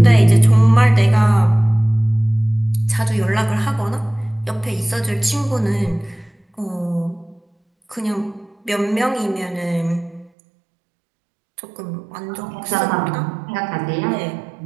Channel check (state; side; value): drops out; left; at 10.3 s